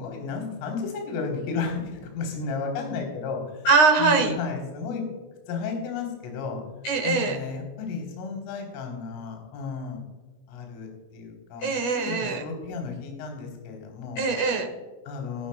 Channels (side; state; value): right; late; 16 ms